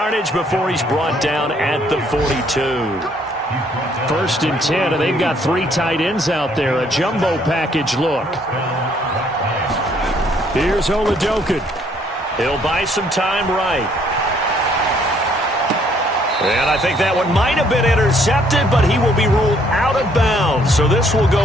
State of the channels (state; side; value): normal; both; correlation 0.65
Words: before he's brought down at the 42. 1st and 10, and they've got 3 tight ends out there. A jumbo package look. Here's Tearsouljathug. He'll buy some time right. And I think that one might have been intercepted, but he will be ruled out of bounds. So this will